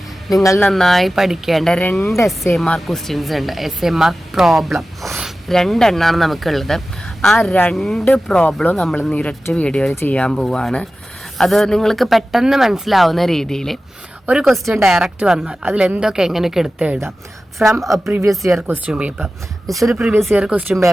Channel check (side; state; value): both; normal; correlation 0.95